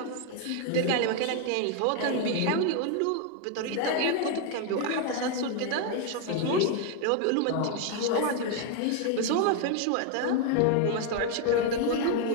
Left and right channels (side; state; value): both; different; correlation 0.01